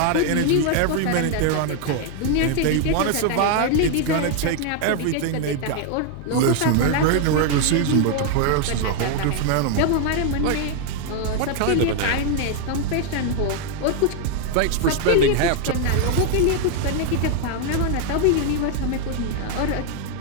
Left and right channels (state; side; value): different; both; correlation 0.00